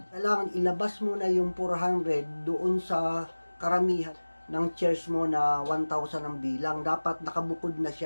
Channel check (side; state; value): both; inverted; correlation -1.00